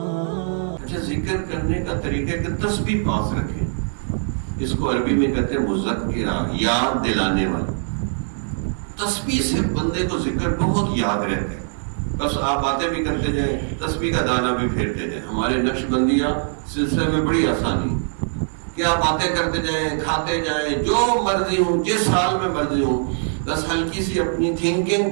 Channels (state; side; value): silent; left; 64 dB below the other